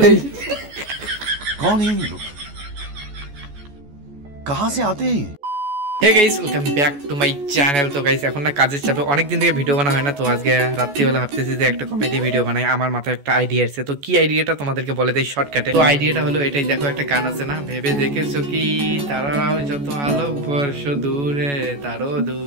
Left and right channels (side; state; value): left; late; 14 ms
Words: कौन है ये लोग कहां से आते हैं hey guys welcome back to my channel. তো গাইস এখন না কাজের চাপে অনেকদিন থেকে ভিডিও বানা হয় না, তো আজকে রাত্রিবেলা ভাবতেছি যে একটা কমেডি ভিডিও বানাই। আমার মাথায় একটা আইডিয়া এসেছে, তো কি আইডিয়াটা তোমাদেরকে বলে দেই শর্টকাটে। তো আইডিয়াটা হলো এটাই, দেখো একটা গান আছে না, ভেবে দেখেছো কি তারাও যত আলোক বর্ষ দূরে তারও